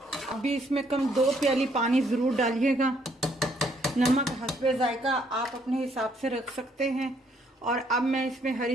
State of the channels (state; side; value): normal; both; correlation 0.68